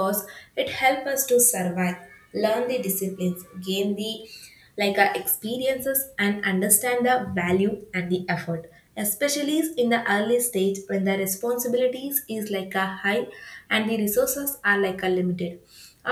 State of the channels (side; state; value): both; identical; correlation 1.00